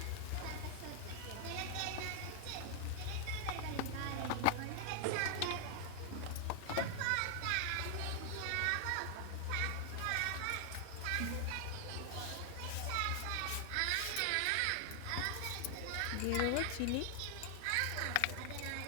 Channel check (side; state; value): both; different; correlation 0.00